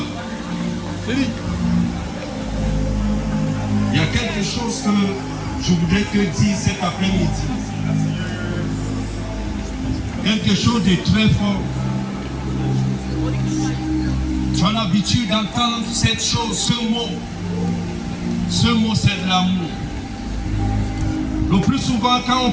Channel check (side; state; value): both; identical; correlation 1.00